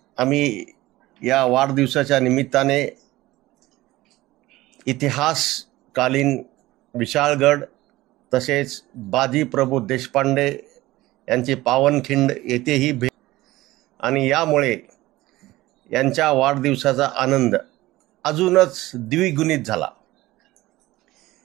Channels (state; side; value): quieter; left; 17.9 dB